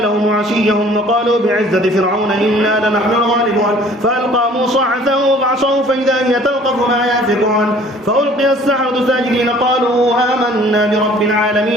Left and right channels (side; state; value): both; normal; correlation 0.53